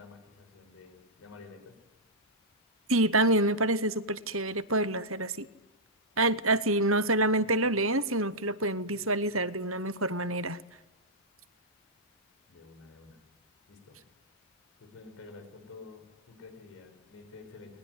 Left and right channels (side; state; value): both; normal; correlation -0.11